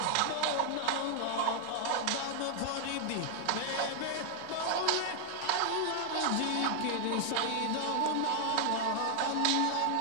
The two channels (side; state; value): both; different; correlation 0.00